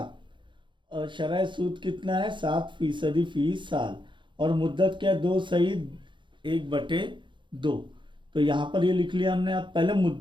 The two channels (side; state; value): left; late; 0.23 ms